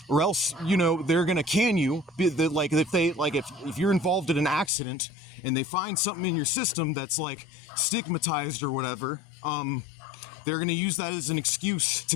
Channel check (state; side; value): drops out; right; at 4.7 s